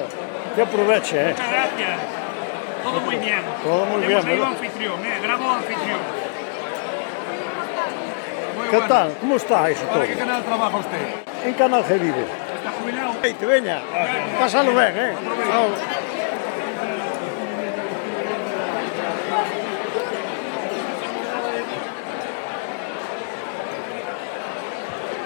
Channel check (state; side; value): silent; right; digital silence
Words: que aproveche, Muchas gracias. Todo muy bien. Todo muy bien, Hemos traído ¿verdad? anfitrión, bravo anfitrión. Muy ¿Qué bueno. tal? ¿Cómo está eso todo? ¿Para qué canal trabaja usted? En Canal G vive. ¿Está jubilado? Hey, te veña, pásalo ben, Chao.